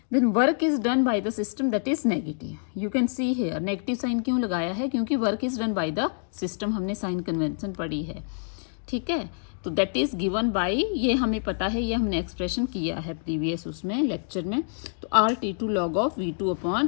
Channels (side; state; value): right; silent; digital silence